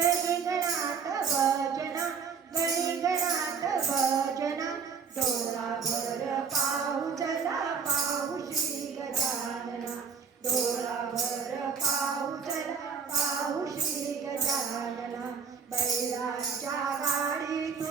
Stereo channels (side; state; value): left; quieter; 6.0 dB